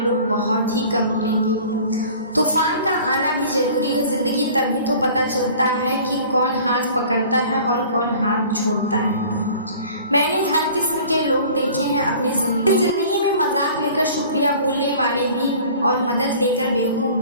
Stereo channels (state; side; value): inverted; both; correlation -0.46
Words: बहुत ही कम मिलेंगे। तूफान का आना भी ज़रूरी है। ज़िंदगी तभी तो पता चलता है कि कौन हाथ पकड़ता है और कौन हाथ छोड़ता है। मैंने हर किस्म के लोग देखे हैं अपनी ज़िंदगी में। मजाक लेकर शुक्रिया बोलने वाले भी और मदद लेकर बेवकूफ़